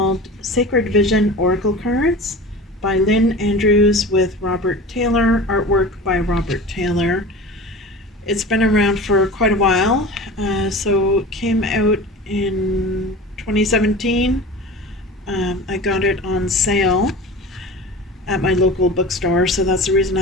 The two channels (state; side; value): normal; both; correlation 0.35